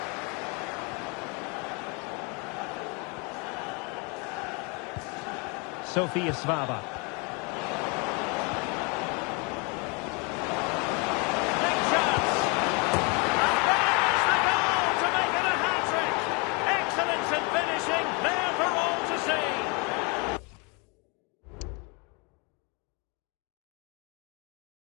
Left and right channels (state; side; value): quieter; right; 31.7 dB